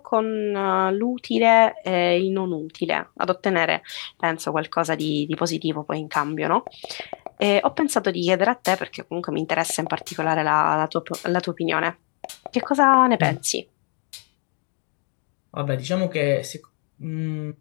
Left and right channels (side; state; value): right; quieter; 39.2 dB